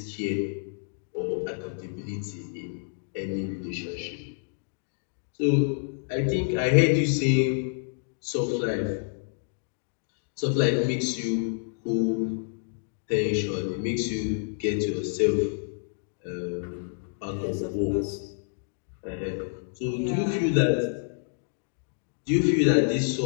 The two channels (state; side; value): silent; right; digital silence